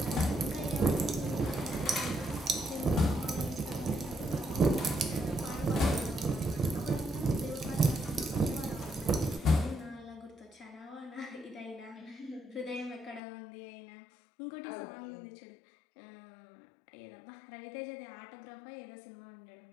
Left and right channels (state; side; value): drops out; right; at 13.2 s